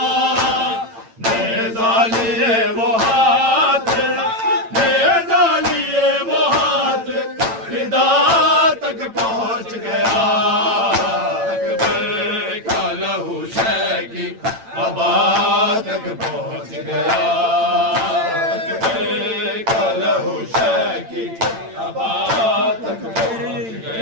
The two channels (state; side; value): late; left; 8.9 ms